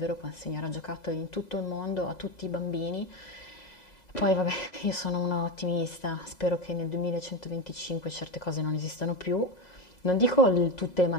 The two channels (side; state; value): right; late; 2.0 ms